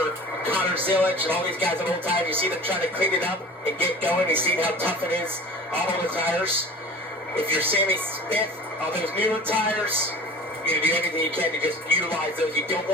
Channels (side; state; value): both; normal; correlation 0.39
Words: Connor Zilic and all these guys on old tires, you see them trying to clean it up and get going. You see how tough it is on all the tires. If you're Sammy Smith on those newer tires, you're going to do everything you can to just utilize those. You don't